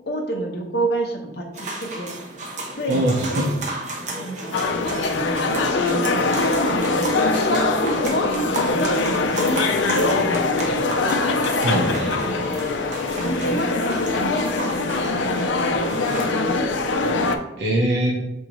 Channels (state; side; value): normal; both; correlation 0.15